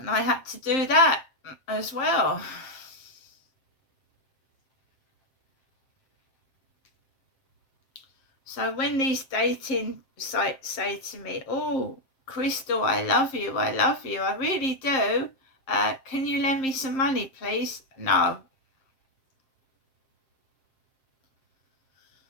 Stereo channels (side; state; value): right; late; 7.6 ms